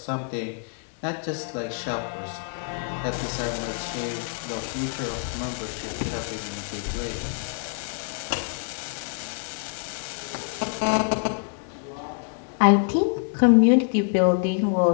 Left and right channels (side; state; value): right; silent; 56 dB below the other